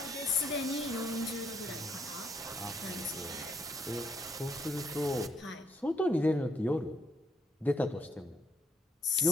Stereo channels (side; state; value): both; normal; correlation 0.71